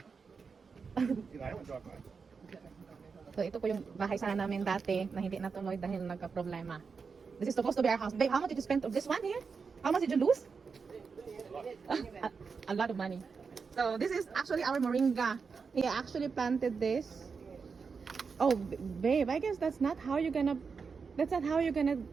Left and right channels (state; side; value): quieter; left; 5.3 dB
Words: So ito po yung bahay sana namin dati na hindi natuloy dahil nagka-problema. This is supposed to be our house. Babe, how much did you spend of this one here? How much did you lose? A lot of money. So this is actually our moringa. He actually planted this. Oh, babe, I guess that's not how you're gonna